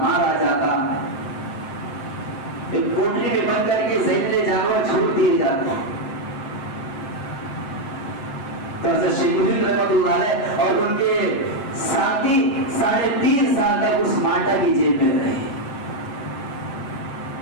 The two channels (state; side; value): late; right; 7.6 ms